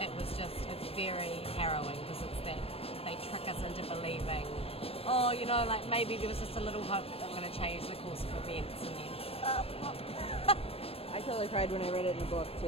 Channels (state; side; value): late; right; 0.28 ms